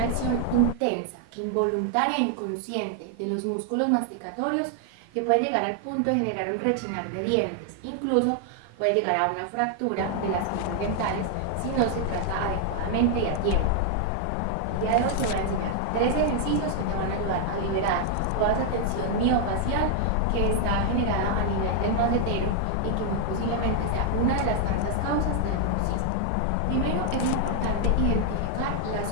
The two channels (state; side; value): different; both; correlation 0.00